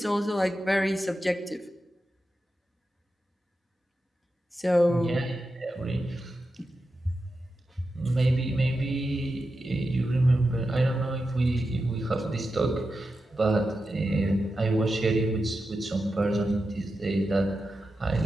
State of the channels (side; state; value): both; normal; correlation 0.90